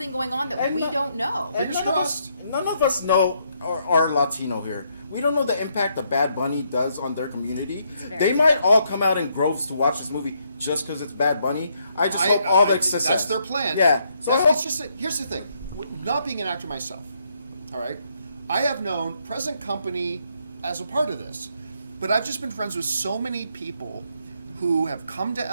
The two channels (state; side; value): inverted; both; correlation -0.74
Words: going on that we don't know. Fingers crossed. None of us know, are Latino here. We don't know the impact that Bad Bunny does on their community. They might all come out in groves to watch this movie just because it's Bad Bunny. I just hope all the success. That's their plan. Yeah. So I hope, here's the thing. Not being an actor myself, all right, I have known present company as a part of this. But I've just been friends with so many people who have come to